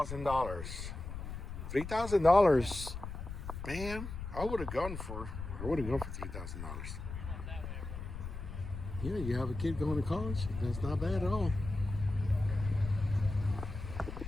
$3,000, man. I would have gone for $3,000. Yeah, you have a kid going to college. That's not bad at all.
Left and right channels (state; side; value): noise; left; rumble, 8 dB below the sound